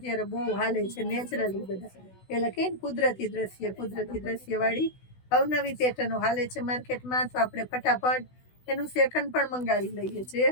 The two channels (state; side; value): late; right; 16 ms